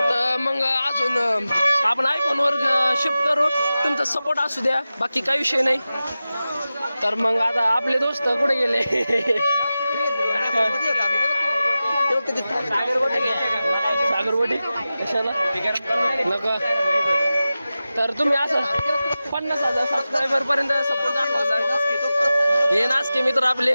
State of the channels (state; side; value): inverted; both; correlation -0.95